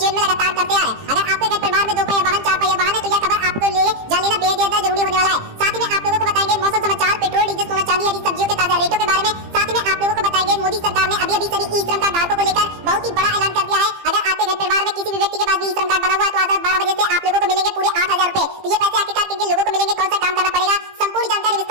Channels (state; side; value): late; left; 18 ms